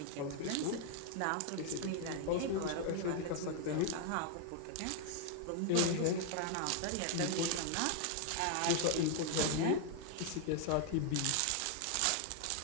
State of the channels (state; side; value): different; both; correlation 0.00